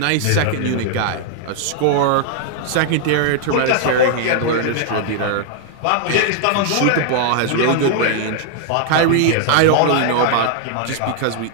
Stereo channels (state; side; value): different; both; correlation 0.00